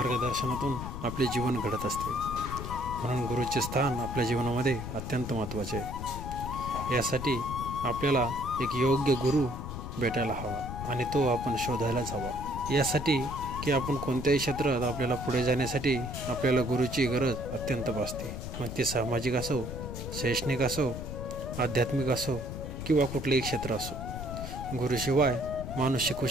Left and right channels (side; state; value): left; noise; rumble, 7 dB below the sound